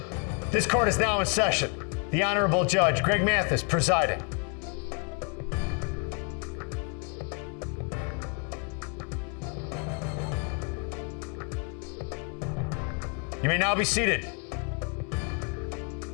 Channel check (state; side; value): quieter; right; 36.2 dB